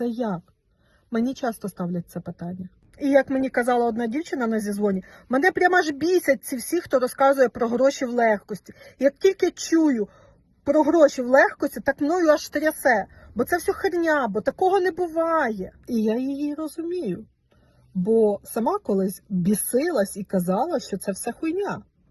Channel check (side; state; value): both; identical; correlation 1.00